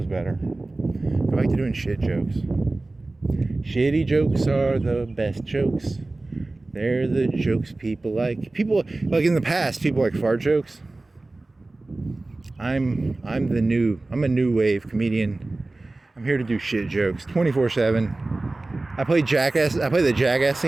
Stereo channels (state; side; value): quieter; left; 3.1 dB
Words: better. I like doing shit jokes. Shitty jokes are the best jokes. They're the jokes people like. People, like in the past, people like fart jokes. I'm a new wave comedian. I'm here to do shit jokes 24/7. I play the Jackass